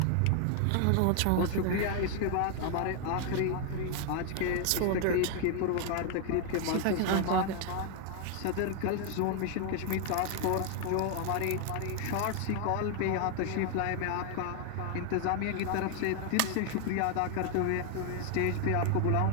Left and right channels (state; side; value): different; both; correlation 0.00